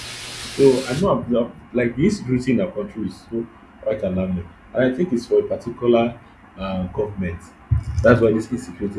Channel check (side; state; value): both; identical; correlation 1.00